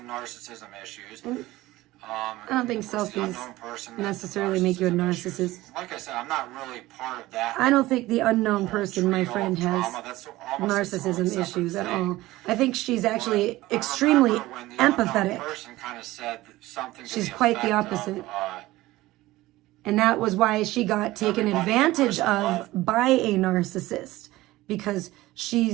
narcissism issues. I don't think of course, the selfies unknown person has necessarily make you a narcissism issues. narcissist. Like I said, I'm not really part of that. I don't think the unknown person, my trio friend, of has drama. That's almost its own narcissism separate issues at thing. all. I think she's actually But I extremely remember when the unknown empathetic. person kind of said something to She's the quite the effect opposite. of, And that was why she got taken Everybody advantage in person of by a narcissist, because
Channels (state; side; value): quieter; left; 17.8 dB